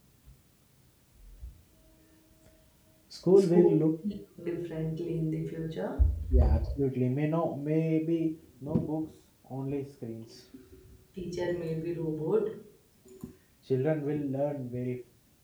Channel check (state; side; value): identical; both; correlation 1.00